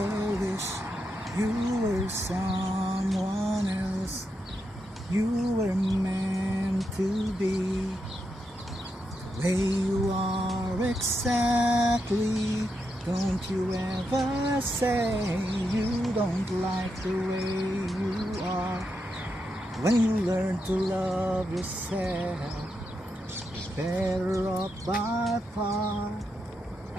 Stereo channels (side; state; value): both; normal; correlation 0.84